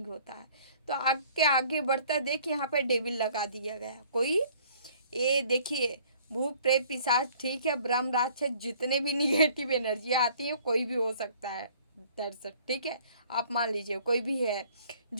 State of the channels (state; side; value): inverted; both; correlation -0.56